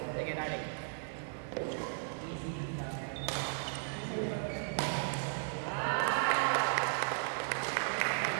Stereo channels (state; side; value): silent; left; 54 dB below the other